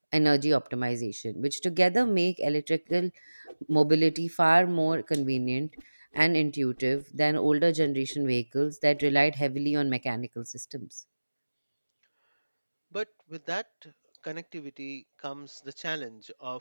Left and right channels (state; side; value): inverted; both; correlation -1.00